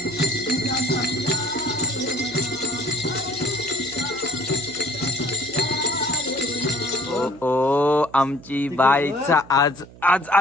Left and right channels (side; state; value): right; noise; hum, 21 dB below the sound